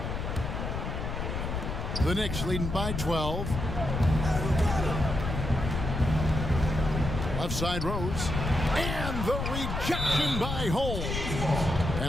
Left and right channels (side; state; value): left; noise; rumble, 3 dB below the sound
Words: The Knicks leading by 12. Left side Rose. And the rejection by Holmes.